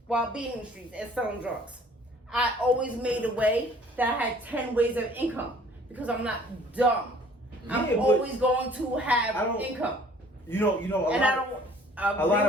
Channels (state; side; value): normal; both; correlation 0.54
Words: while being in the streets and selling drugs. I always made a way that I had 10 ways of income because I'm not dumb. Yeah, I'm but always going to I have don't- income. You know. And I don't a agree lot